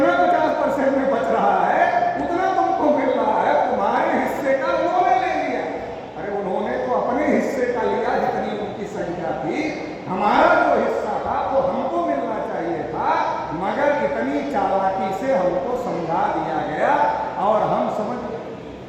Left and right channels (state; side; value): identical; both; correlation 1.00